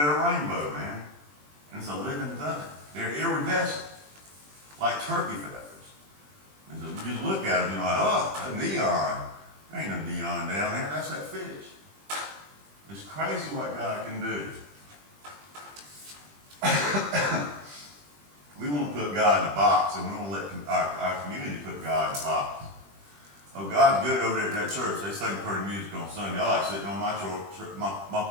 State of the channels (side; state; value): left; late; 20 ms